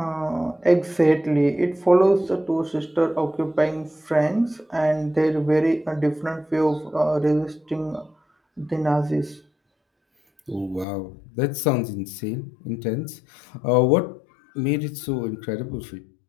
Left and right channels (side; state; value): right; drops out; at 10.9 s